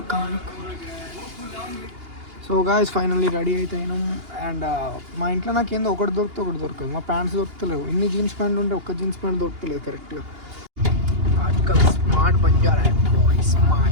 సో గాయ్స్ ఫైనల్లీ రెడీ అయితే అయినాం. అండ్ మా ఇంట్లో నాకు ఏందో ఒకటి దొరకదు. మా ప్యాంట్స్ దొరుకుతలేవు. ఇన్ని జీన్స్ ప్యాంట్లు ఉంటే ఒక్క జీన్స్ ప్యాంట్ దొరుకుతలేదు కరెక్ట్గా. Article smart Banjara boy,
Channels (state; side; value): late; left; 2.8 ms